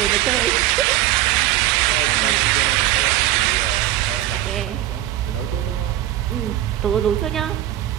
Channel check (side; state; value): left; quieter; 13.9 dB